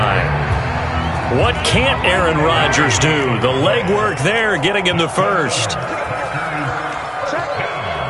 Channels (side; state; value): both; identical; correlation 1.00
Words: What can't Aaron Rodgers do? The legwork there getting him the first.